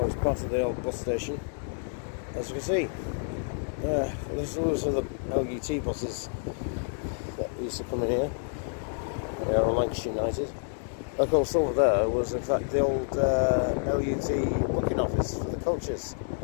part of the old bus station. As you can see, those are the LUT buses that used to come in here. They are Lancashire United. Of course, over there was in fact the old LUT booking office for the coaches,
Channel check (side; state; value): right; silent; digital silence